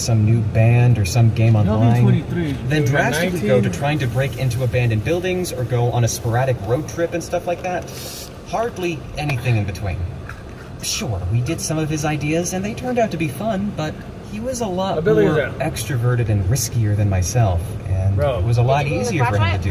new band or some game online, then drastically go to trying to break into abandoned buildings or go on a sporadic road trip and stuff like that. Hardly anything in between. Sure, we did some of his ideas and they turned out to be fun, but he was a lot more extroverted and riskier than myself, and it was a lot easier for him to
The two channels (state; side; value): identical; both; correlation 1.00